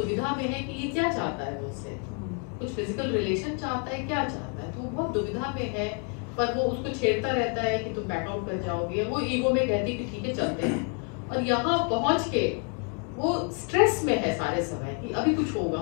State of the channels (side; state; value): right; quieter; 36.8 dB